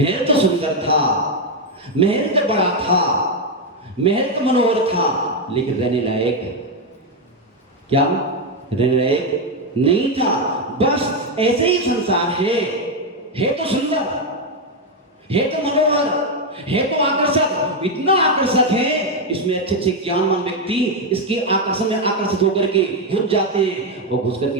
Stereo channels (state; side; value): normal; both; correlation 0.05